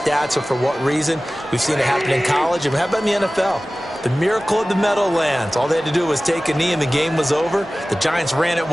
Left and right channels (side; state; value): both; normal; correlation 0.97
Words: or for what reason. We've seen it happen in college, and how about in the NFL? The miracle of the Meadowlands. All they had to do was take a knee and the game was over. The Giants ran it